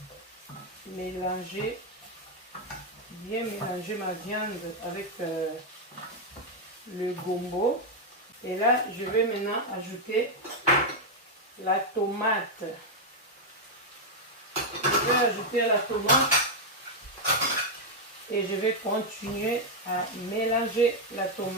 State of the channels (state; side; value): normal; both; correlation 0.01